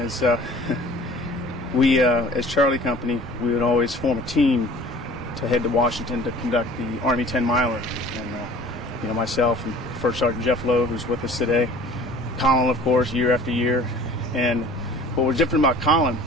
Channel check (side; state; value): both; normal; correlation 0.47